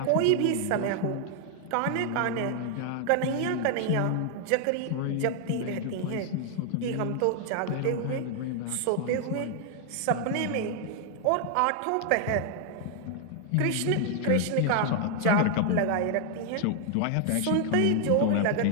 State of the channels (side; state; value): both; different; correlation 0.00